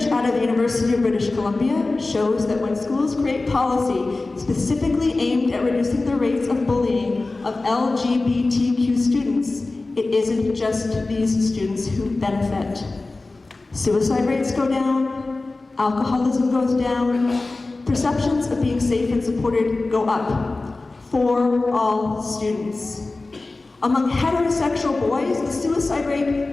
out of the University of British Columbia shows that when schools create policy specifically aimed at reducing the rates of bullying of LGBTQ students, it isn't just these students who benefit. Suicide rates go down, alcoholism goes down, perceptions of being safe and supported go up for all students. Among heterosexual boys, the suicide rate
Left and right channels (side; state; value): right; quieter; 3.3 dB